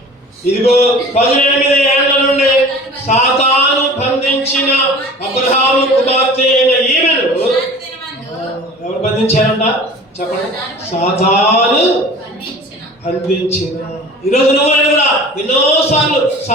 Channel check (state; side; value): normal; both; correlation 0.42